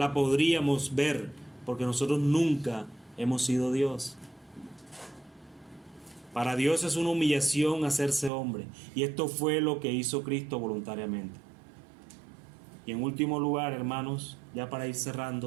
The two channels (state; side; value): drops out; left; at 8.3 s